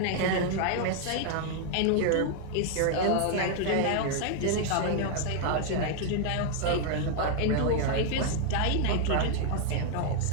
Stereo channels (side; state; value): both; different; correlation 0.00